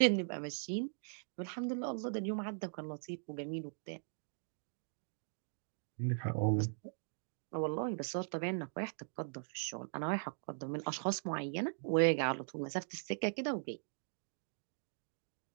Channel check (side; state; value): left; silent; digital silence